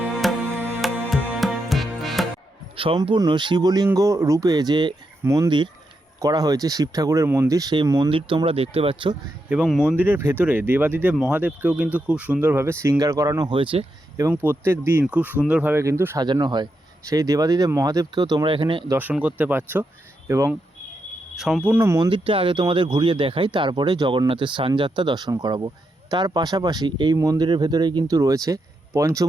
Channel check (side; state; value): both; normal; correlation 0.84